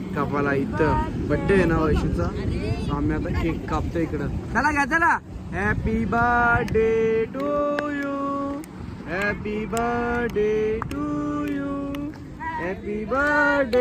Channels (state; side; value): identical; both; correlation 1.00